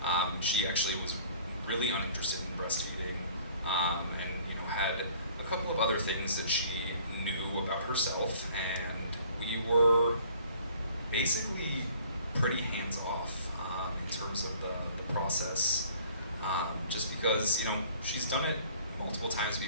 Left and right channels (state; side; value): inverted; both; correlation -0.53